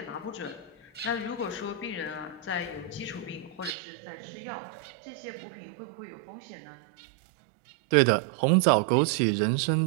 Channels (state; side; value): drops out; left; at 3.8 s